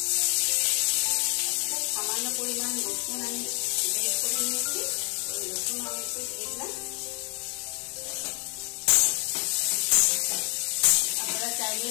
সামান্য পরিমাণ রসুন আমি বের করে নিয়েছি, ওই রসুন আমি একটু দিয়ে দিলাম। আপনারা চাইলে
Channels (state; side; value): quieter; right; 37.2 dB